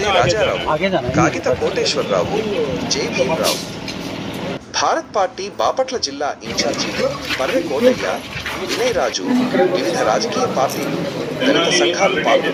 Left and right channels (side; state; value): both; identical; correlation 1.00